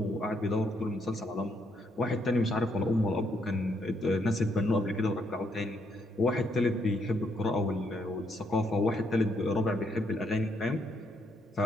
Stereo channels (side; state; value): both; normal; correlation 0.74